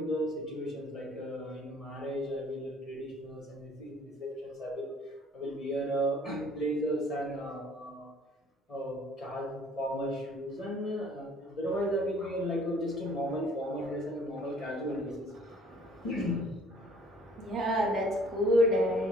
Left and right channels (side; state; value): both; normal; correlation 0.56